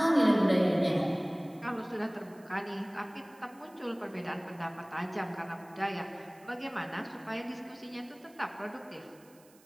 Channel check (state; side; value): noise; right; hiss, 27 dB below the sound